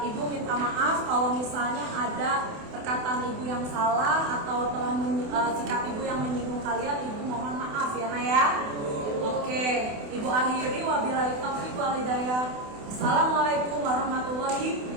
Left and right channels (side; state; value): left; late; 28 ms